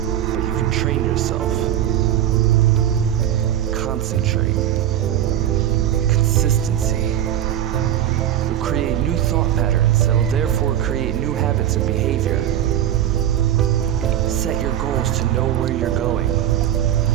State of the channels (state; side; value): quieter; left; 11.1 dB